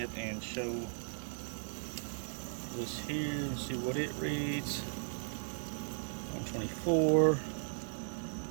and show this here and see what it reads. 124.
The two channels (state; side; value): silent; left; 53 dB below the other